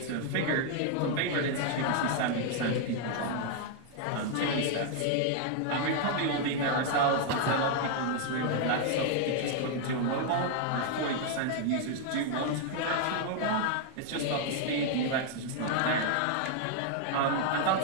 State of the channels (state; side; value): different; both; correlation 0.00